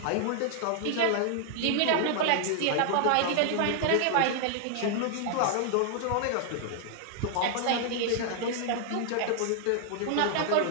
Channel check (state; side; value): different; both; correlation 0.00